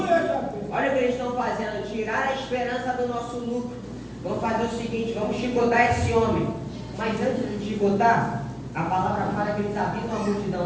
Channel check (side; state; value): both; identical; correlation 1.00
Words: o que eles estão fazendo, tirar a esperança do nosso lucro. Vamos fazer o seguinte, vamos chicotar esse homem. Mas antes de chicotar, a palavra fala que eles avisam a